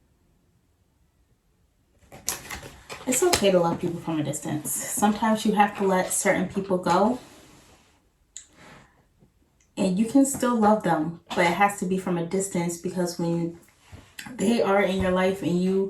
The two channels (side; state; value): both; identical; correlation 1.00